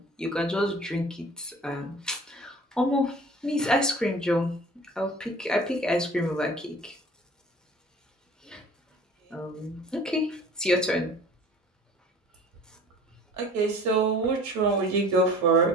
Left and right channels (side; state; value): both; normal; correlation 0.46